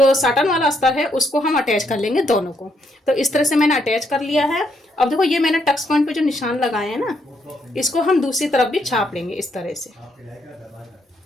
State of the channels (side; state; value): both; normal; correlation 0.75